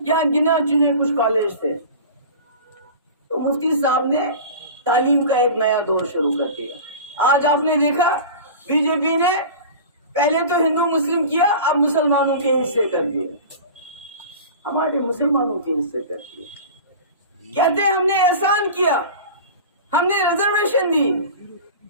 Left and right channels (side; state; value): both; inverted; correlation -0.35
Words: यहाँ गिने चुने कुछ कॉलेज थे। तो मुफ्ती साहब ने तालीम का एक नया दौर शुरू कर दिया। आज आपने देखा बीजेपी ने पहले तो हिंदू मुस्लिम किया, अब मुसलमानों के हिस्से कर दिए, हमारे मुसलमानों के हिस्से कर दिए। कहते हैं हमने एहसान किया, हमने रिजर्वेशन दी।